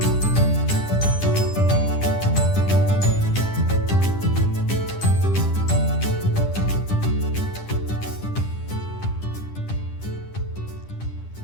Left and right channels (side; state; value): right; late; 10 ms